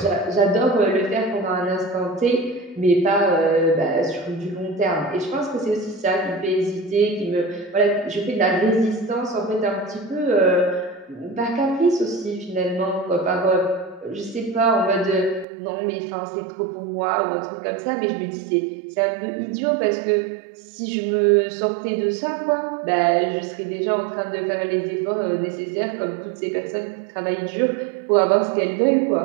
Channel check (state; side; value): drops out; left; at 15.5 s